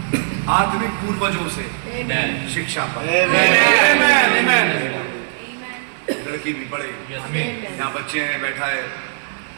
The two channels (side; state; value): left; silent; 56 dB below the other